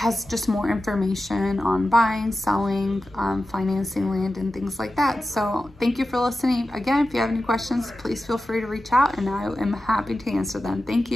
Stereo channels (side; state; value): both; normal; correlation 0.93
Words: just more information on buying, selling, financing land and things like that. So thank you for listening. Again, if you have any questions, please feel free to reach out and I am happy to answer them. Thank